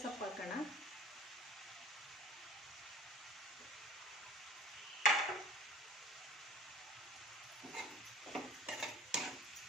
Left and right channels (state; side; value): normal; both; correlation 0.45